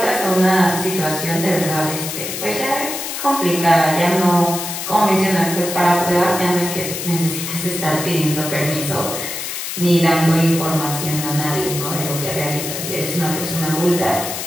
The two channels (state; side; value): noise; left; hiss, 5 dB below the sound